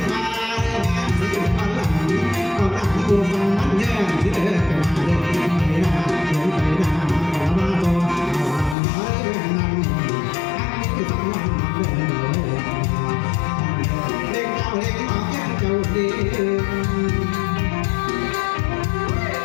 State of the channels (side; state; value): right; drops out; at 8.8 s